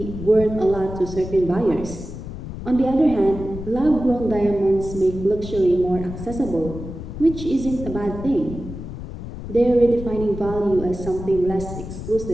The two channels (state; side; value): noise; left; rumble, 9 dB below the sound